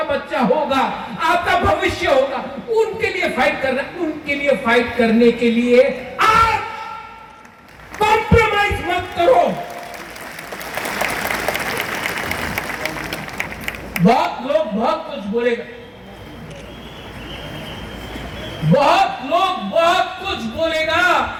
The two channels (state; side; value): identical; both; correlation 1.00